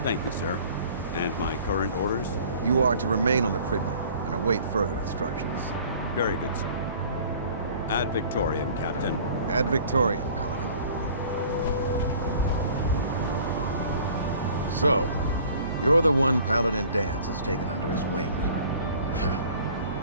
Thank you, sir. And my current orders? You are to remain on the Pridman and await further instructions. Very good, sir. Ad Victoriam, Captain. Ad Victoriam, Paladin. So, you're the one Paladin Danse has taken under his wing.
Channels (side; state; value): both; inverted; correlation -0.49